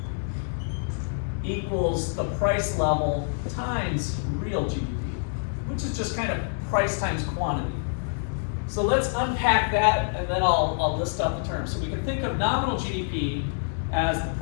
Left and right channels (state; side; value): silent; right; digital silence